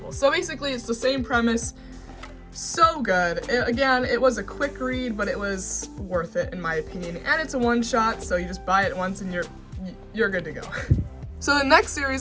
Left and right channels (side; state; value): both; identical; correlation 1.00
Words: So basically it's the same premise. So good. Again, it was a quick read, but it was worth it in my opinion, and it's a one-shot, so you just buy it once and you're good to go. So the next